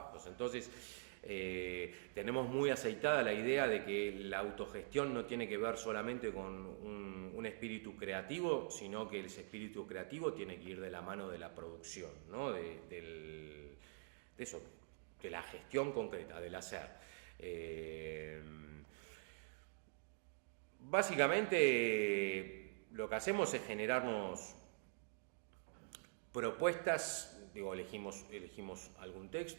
Entonces, tenemos muy aceitada la idea de que la autogestión no tiene que ver solamente con un espíritu creativo, sino que ese espíritu creativo tiene que ir de la mano de la producción, ¿no? de la gestión concreta, del hacer. Básicamente lo que hacemos es generarnos propuestas. Digo, elegimos algún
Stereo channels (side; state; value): left; silent; digital silence